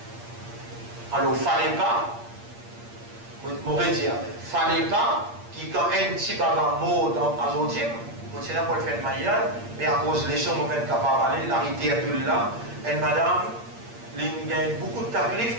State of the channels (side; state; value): left; late; 8.6 ms